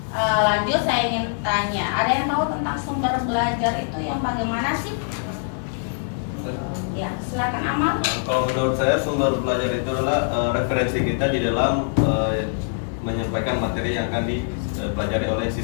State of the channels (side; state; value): right; silent; digital silence